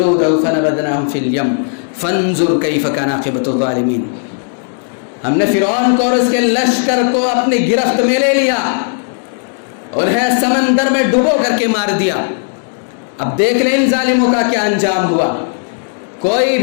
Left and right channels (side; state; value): right; silent; digital silence